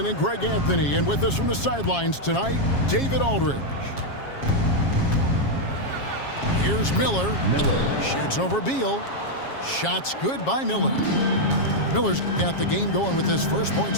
and Greg Anthony. And with us from the sidelines tonight, David Aldridge. Here's Miller. Shoots over Beal. Shots good by Miller. Miller's got the game going with his first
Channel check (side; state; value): right; late; 7.3 ms